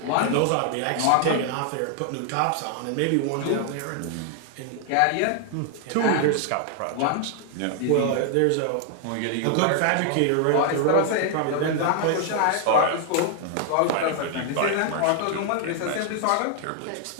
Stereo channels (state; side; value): different; both; correlation 0.00